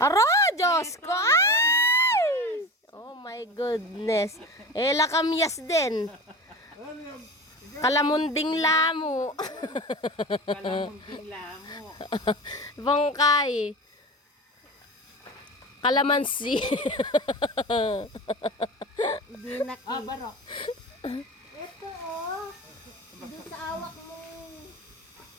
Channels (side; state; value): both; normal; correlation 0.31